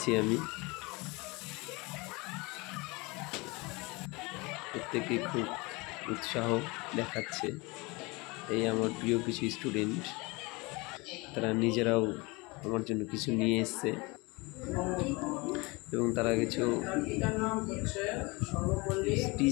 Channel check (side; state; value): right; quieter; 25.5 dB